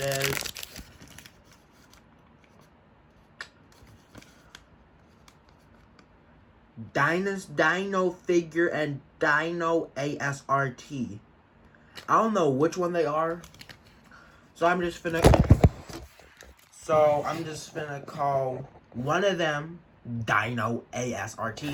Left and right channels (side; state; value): both; identical; correlation 1.00